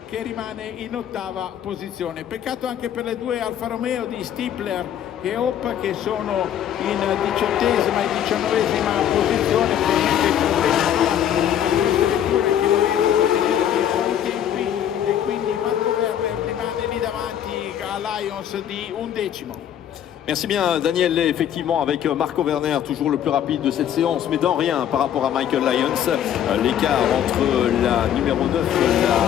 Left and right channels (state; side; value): quieter; right; 10.1 dB